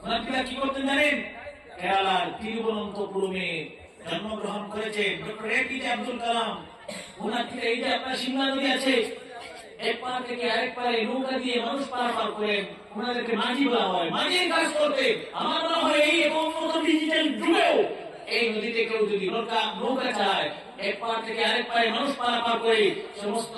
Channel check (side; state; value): both; identical; correlation 1.00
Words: ওনারা কি করতেন জানেন? কেরালার তিরুবনন্তপুরমে জন্মগ্রহণ করেছে ডক্টর এপিজে আব্দুল কালাম। ওনার এই যে আপনার সিমলা নদী আছে, এক পার থেকে আরেক পারে নৌকা দিয়ে মানুষ পারাপার করেন, ওনাদেরকে মাঝি বলা হয়। মাঝির কাজ করতে আমার মনে হয় এই উন্নত ডিজিটাল যুগেও এই নদীতে কেউ যদি নৌকা চালায়, এক পার থেকে আরেক পারে মানুষ পারাপার করে সমস্ত